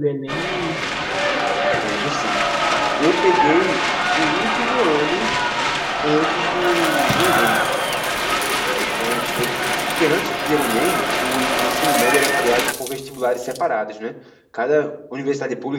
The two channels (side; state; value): both; identical; correlation 1.00